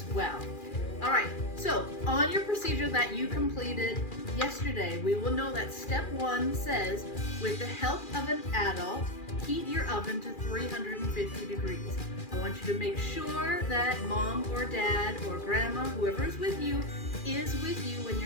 well. All right, so on your procedure that you completed yesterday, we will know that step 1 says, with the help of an adult, heat your oven to 350 degrees. I want you to make sure that mom or dad or grandma, whoever is with you when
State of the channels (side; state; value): right; late; 2.4 ms